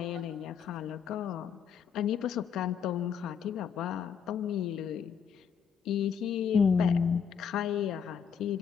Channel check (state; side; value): quieter; right; 7.3 dB